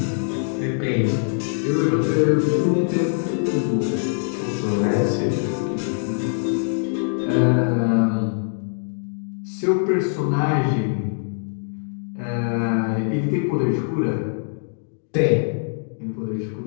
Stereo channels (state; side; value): silent; right; digital silence